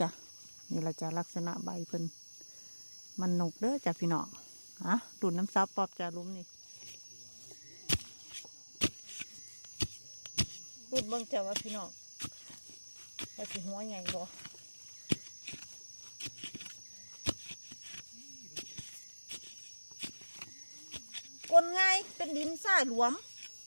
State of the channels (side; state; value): both; inverted; correlation -1.00